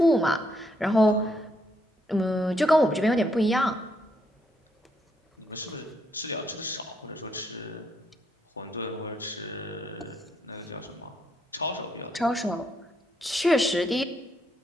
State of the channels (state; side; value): normal; both; correlation 0.75